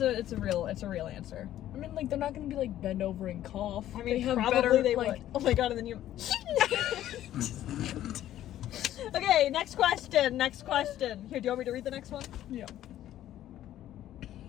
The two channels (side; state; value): right; quieter; 12.6 dB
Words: a real answer. I mean, like, they're not gonna be like bend over and cough. I mean, they have probably better, they like, would. Oh my god, and then you. Okay, next question. Here, do you want me to read the next one? Yeah.